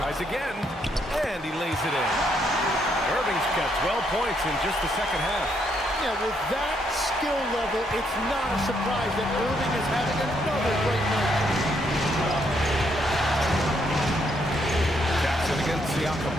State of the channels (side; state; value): both; normal; correlation 0.74